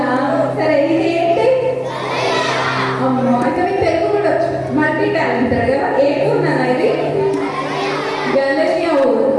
సరే ఇది ఏంటి? అమ్మో అయితే మీకు తెలుగు కూడా వచ్చు. మల్టీ టాలెంటెడ్ కదా. ఏడున్నానా ఇది? గలనియా ఊరు.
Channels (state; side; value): identical; both; correlation 1.00